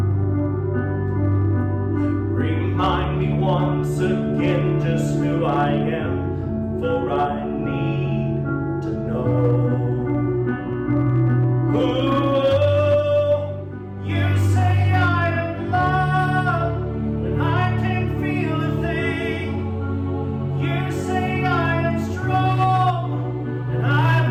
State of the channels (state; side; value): identical; both; correlation 1.00